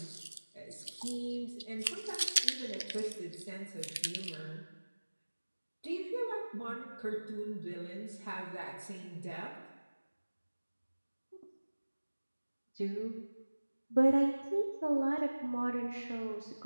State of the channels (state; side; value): inverted; both; correlation -1.00